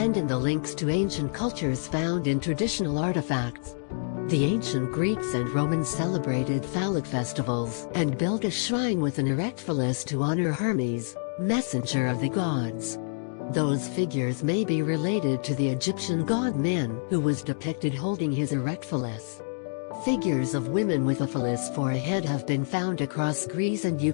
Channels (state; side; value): silent; right; digital silence